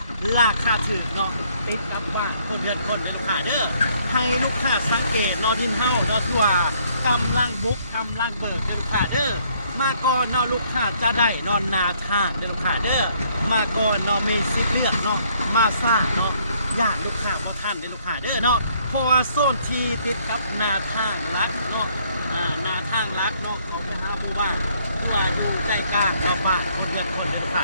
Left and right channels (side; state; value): both; inverted; correlation -0.66